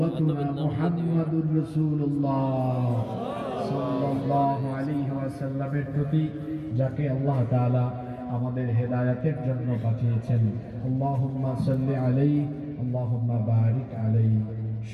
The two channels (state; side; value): identical; both; correlation 1.00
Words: মুহাম্মাদুর রাসূলুল্লাহ সাল্লাল্লাহু আলাইহি ওয়াসাল্লামের প্রতি, যাকে আল্লাহ তাআলা আমাদের হেদায়েতের জন্য পাঠিয়েছেন। আল্লাহুম্মা সাল্লি আলাইহি, আল্লাহুম্মা বারিক আলাইহি।